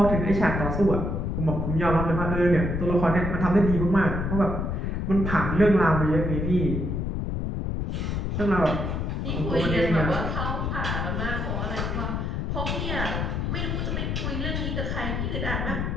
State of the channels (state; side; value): noise; left; rumble, 1 dB below the sound